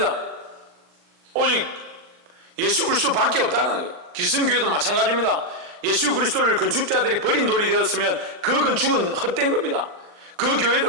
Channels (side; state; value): left; late; 40 ms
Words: 오직 예수 그리스도밖에 없다는 거예요. 기성교회도 마찬가지입니다. 예수 그리스도를 건축자들이 버린 돌이 되었으면 그 건축은 헛된 겁니다. 그